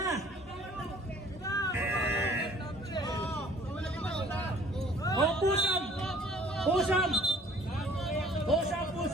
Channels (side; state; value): both; normal; correlation 0.53